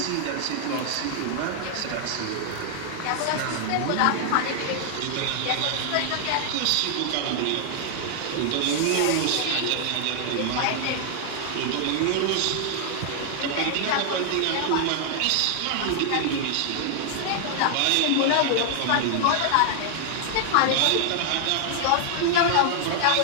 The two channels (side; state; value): both; different; correlation 0.00